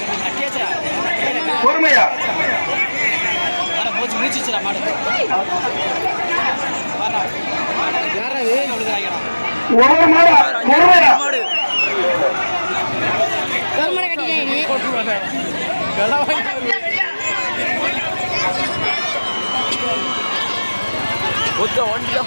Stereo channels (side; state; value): both; inverted; correlation -1.00